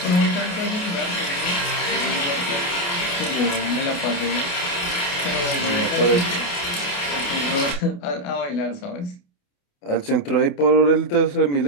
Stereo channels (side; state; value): right; late; 28 ms